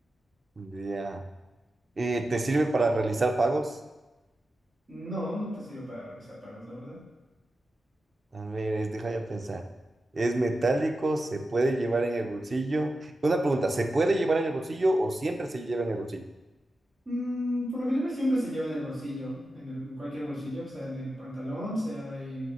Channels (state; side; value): normal; both; correlation 0.91